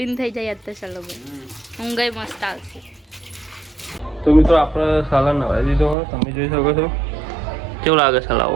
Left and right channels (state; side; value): drops out; left; at 6.0 s